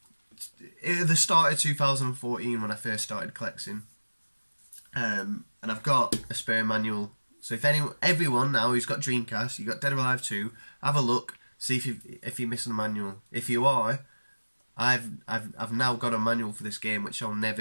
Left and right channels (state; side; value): inverted; both; correlation -1.00